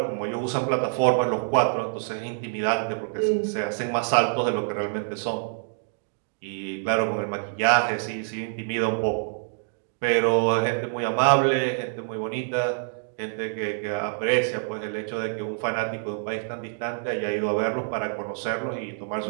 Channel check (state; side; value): silent; left; digital silence